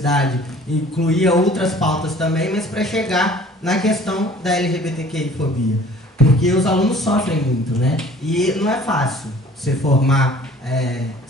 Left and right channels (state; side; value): normal; both; correlation 0.50